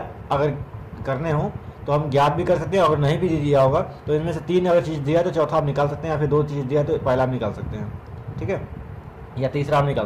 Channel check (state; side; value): identical; both; correlation 1.00